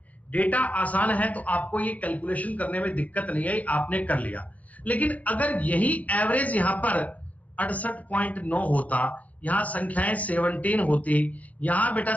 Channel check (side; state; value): right; late; 0.072 ms